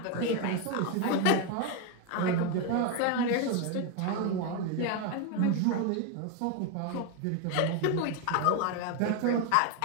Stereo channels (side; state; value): both; different; correlation 0.01